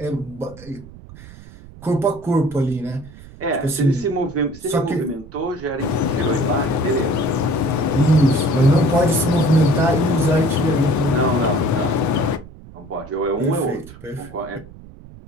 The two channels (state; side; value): noise; right; rumble, 19 dB below the sound